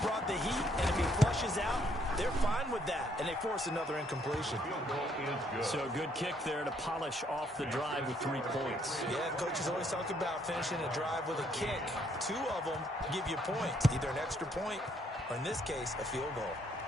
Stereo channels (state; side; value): normal; both; correlation 0.69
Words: brought the heat, and if he flushes out, they're fine with that, and they force another incompletion. So good kick there to polish off the drive with 3 points. Yeah, coaches always talk about finishing a drive with a kick. 2 of them give you points, either an extra point or, in this case, a field goal.